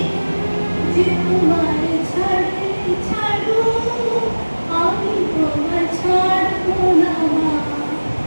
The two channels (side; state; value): both; inverted; correlation -1.00